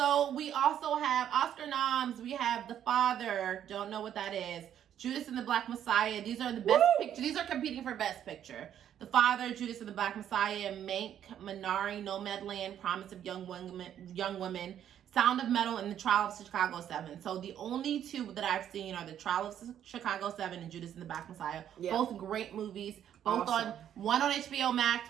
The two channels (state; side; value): quieter; left; 10.1 dB